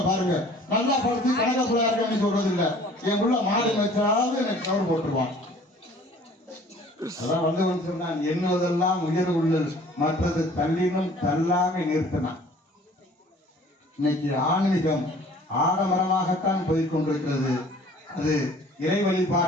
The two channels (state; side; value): normal; both; correlation 0.51